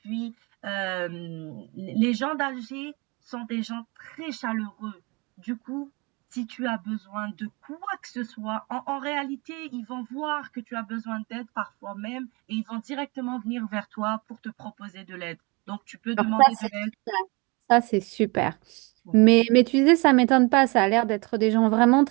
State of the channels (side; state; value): left; quieter; 27.8 dB